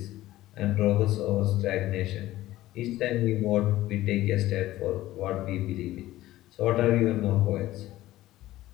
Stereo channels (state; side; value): quieter; right; 15.7 dB